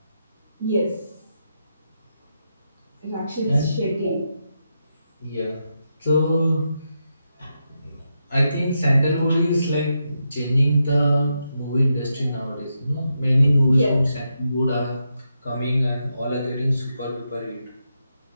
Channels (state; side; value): inverted; both; correlation -0.84